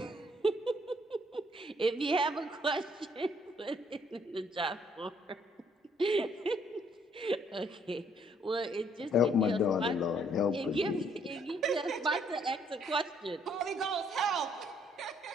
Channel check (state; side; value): normal; both; correlation 0.66